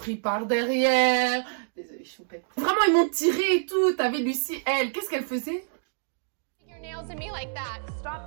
par derrière. Désolée, choupette. Vraiment, ils m'ont tiré et tout. T'avais Lucie, elle, qu'est-ce qu'elle faisait? Your nails at me like that.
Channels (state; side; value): silent; left; digital silence